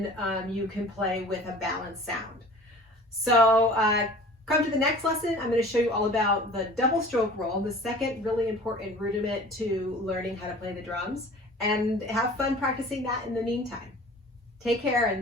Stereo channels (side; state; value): both; normal; correlation 0.44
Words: you can play with a balanced sound. So come to the next lesson. I'm going to show you all about the double stroke roll, the second really important rudiment to learning how to play the drums, and have fun practicing that in the meantime. Take care,